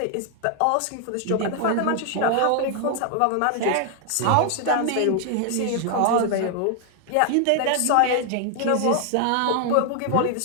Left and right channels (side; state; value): both; different; correlation 0.00